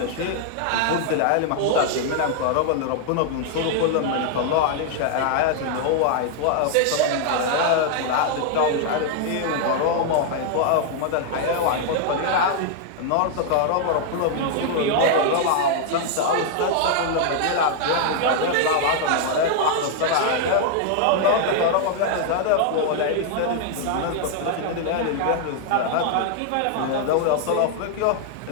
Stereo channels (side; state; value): both; different; correlation 0.00